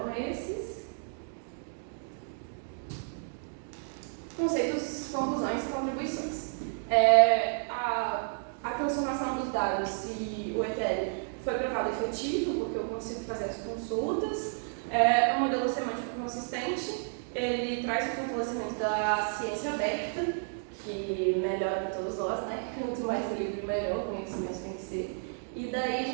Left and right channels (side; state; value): left; silent; digital silence